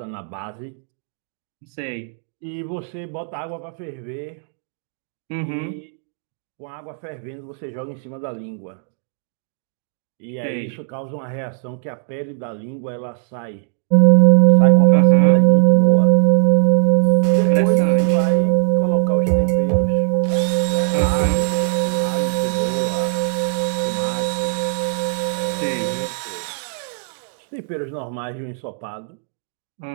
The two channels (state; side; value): silent; left; digital silence